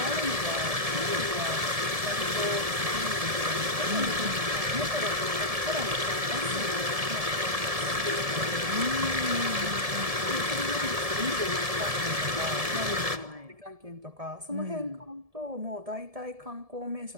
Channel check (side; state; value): left; late; 1.7 ms